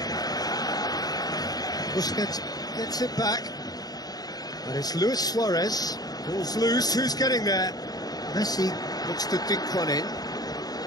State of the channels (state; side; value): late; right; 0.19 ms